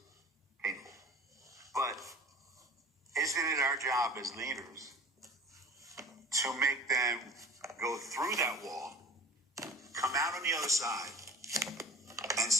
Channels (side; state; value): both; normal; correlation 0.39